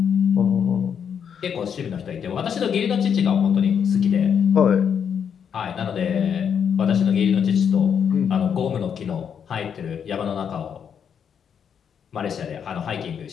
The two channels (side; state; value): right; quieter; 7.7 dB